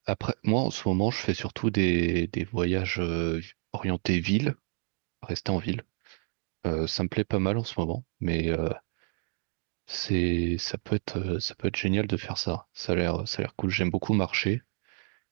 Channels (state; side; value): quieter; left; 39.2 dB